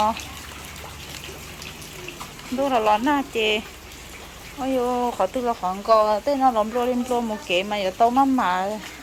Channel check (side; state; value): both; identical; correlation 1.00